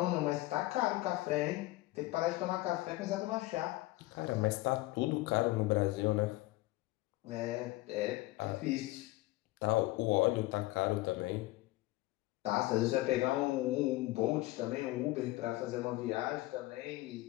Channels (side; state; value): right; quieter; 19.1 dB